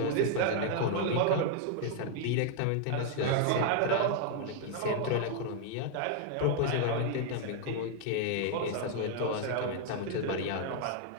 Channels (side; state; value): both; different; correlation 0.00